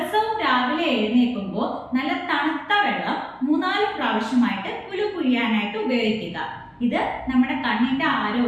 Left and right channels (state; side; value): identical; both; correlation 1.00